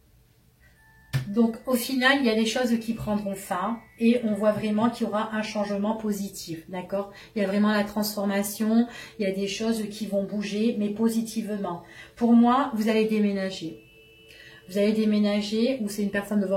Donc, au final, il y a des choses qui prendront fin et on voit vraiment qu'il y aura un changement positif, d'accord? Il y a vraiment la transformation, il y a des choses qui vont bouger, mais positivement. Pour moi, vous allez déménager. Vous allez déménager ou c'est une personne de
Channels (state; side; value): identical; both; correlation 1.00